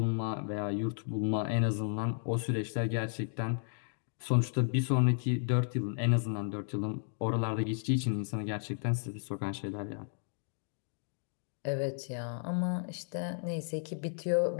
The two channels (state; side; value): silent; right; digital silence